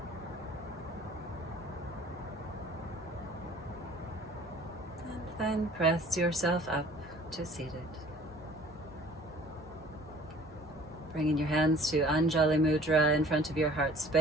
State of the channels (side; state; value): both; normal; correlation 0.51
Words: And then press yourself up to seated. Bringing your hands to Anjali Mudra in front of your heart